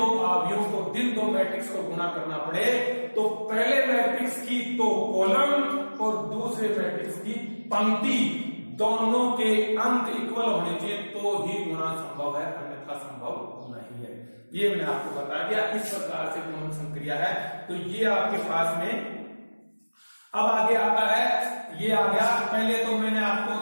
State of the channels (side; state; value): both; inverted; correlation -1.00